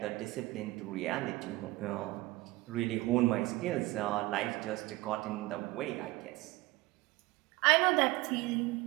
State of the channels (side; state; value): left; quieter; 20.0 dB